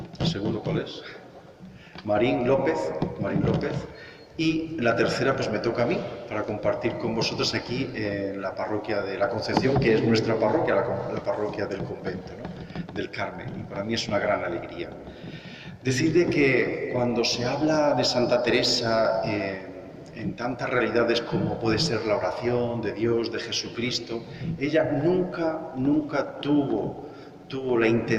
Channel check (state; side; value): identical; both; correlation 1.00